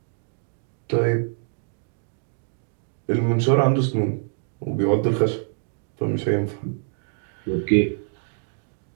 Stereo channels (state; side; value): silent; left; digital silence